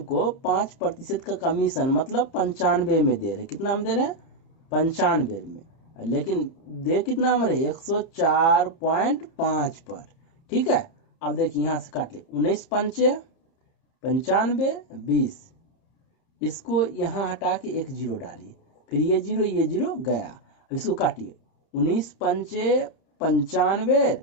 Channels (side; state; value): right; late; 30 ms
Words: 5% का कमीशन मतलब 95 में दे रहे। कितना में दे रहे हैं? 95 में। लेकिन दे कितना में रहे? 104.5 पर। ठीक है, अब देखिए यहाँ से काट ले, 19 पंचे 95 20, इसको यहाँ हटा के एक जीरो डालिए, फिर ये जीरो गया। अब इसको काटिए, 19 पंचे 95